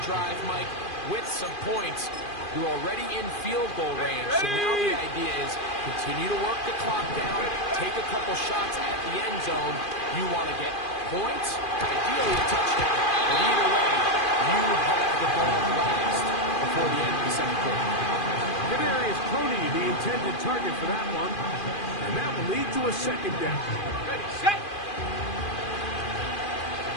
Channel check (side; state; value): right; late; 2.4 ms